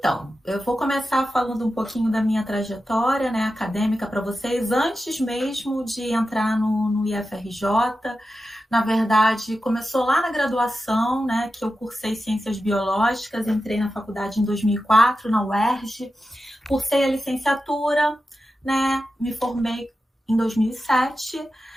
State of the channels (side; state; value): both; normal; correlation 0.91